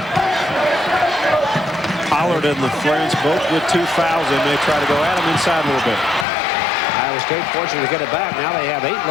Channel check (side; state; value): right; drops out; at 6.2 s